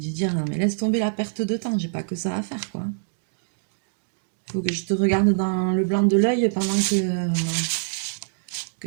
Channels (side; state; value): left; silent; digital silence